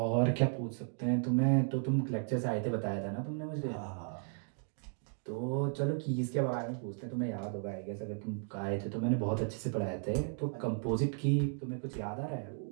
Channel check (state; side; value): silent; left; 54 dB below the other